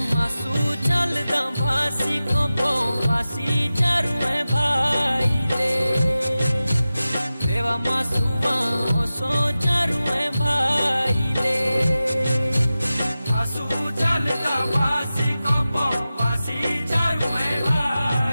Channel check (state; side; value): inverted; both; correlation -0.95